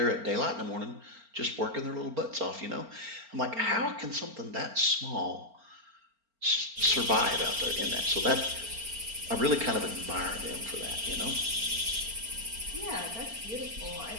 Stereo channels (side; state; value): left; late; 4.4 ms